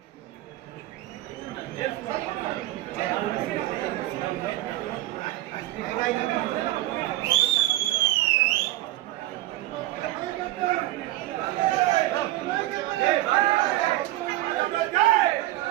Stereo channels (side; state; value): left; quieter; 16.1 dB